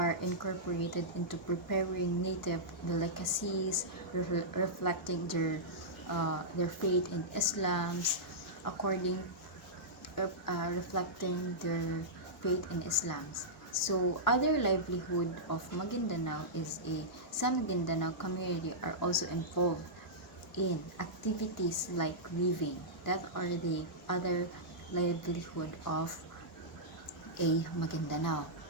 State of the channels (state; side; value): normal; both; correlation -0.13